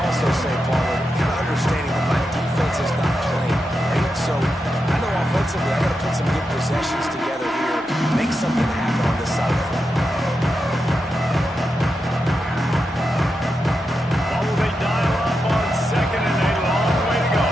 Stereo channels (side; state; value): both; normal; correlation 0.87